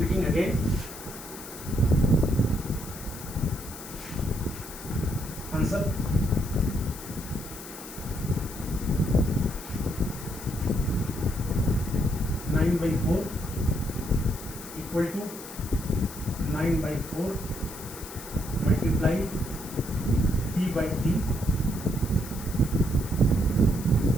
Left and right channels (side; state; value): left; noise; hiss, 13 dB below the sound